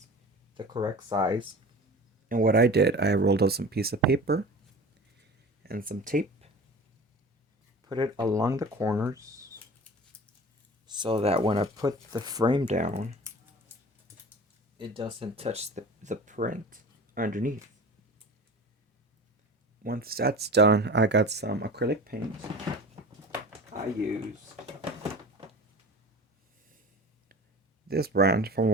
the correct size. And what I did, I rolled out some piece of paper and some tape, put it along the corners so that when I put the frame down, it doesn't touch the print underneath. Once that's done, I got some acrylic paint. I used this brand from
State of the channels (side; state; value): both; normal; correlation 0.37